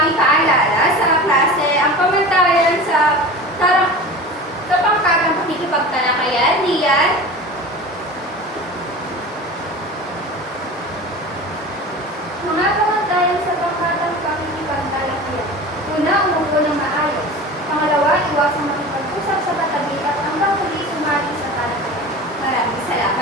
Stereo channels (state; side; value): normal; both; correlation 0.34